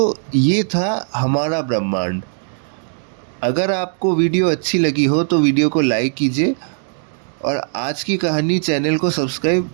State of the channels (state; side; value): silent; left; 67 dB below the other